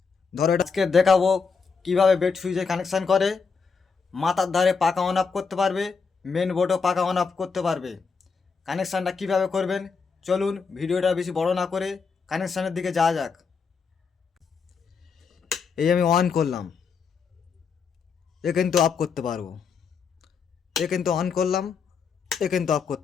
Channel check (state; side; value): quieter; right; 5.4 dB